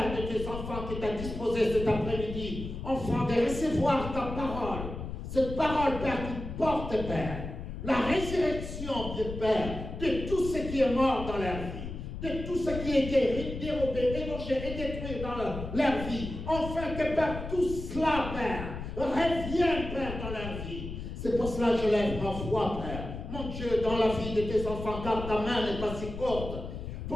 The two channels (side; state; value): left; noise; rumble, 7 dB below the sound